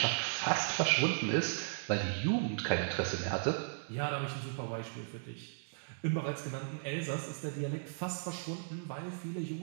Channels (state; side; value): silent; left; digital silence